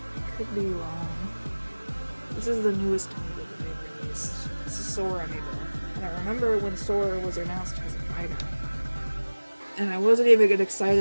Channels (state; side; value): inverted; both; correlation -1.00